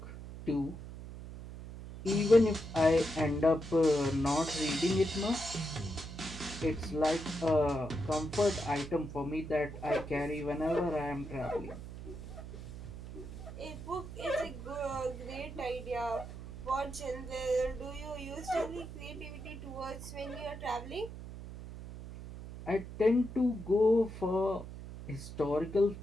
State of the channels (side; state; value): right; noise; hum, 11 dB below the sound